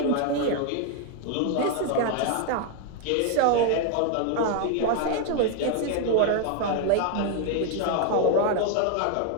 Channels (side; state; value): both; different; correlation 0.00